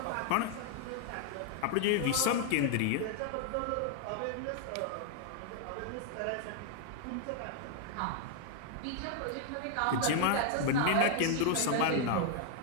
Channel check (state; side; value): different; both; correlation 0.00